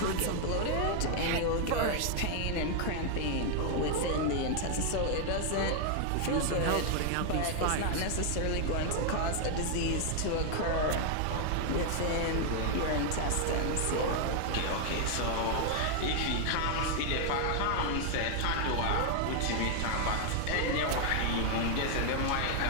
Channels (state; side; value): different; both; correlation 0.00